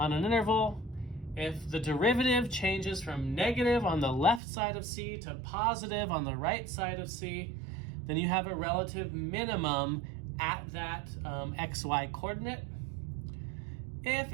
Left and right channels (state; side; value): drops out; left; at 4.4 s